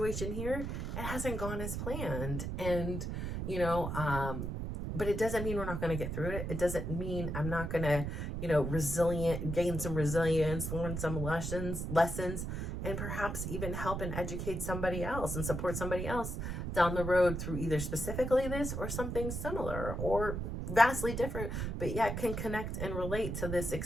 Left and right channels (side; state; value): right; noise; rumble, 3 dB below the sound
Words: here, it hasn't gone as planned. And, but it doesn't mean we're not going to get through it. It doesn't mean I'm not going to, gain some resilience, learn some lessons, and perhaps even help and educate somebody else and support somebody else down the road through either specifically this or something similar or vastly different, but yet can connect and relate to this